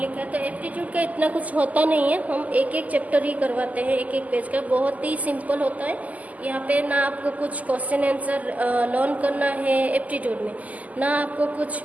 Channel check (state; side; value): late; left; 0.076 ms